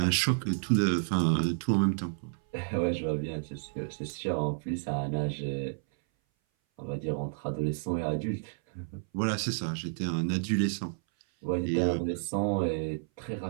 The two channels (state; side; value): silent; left; 57 dB below the other